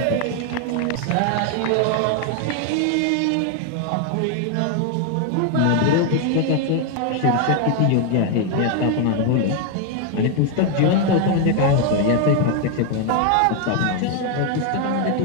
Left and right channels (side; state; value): both; different; correlation 0.01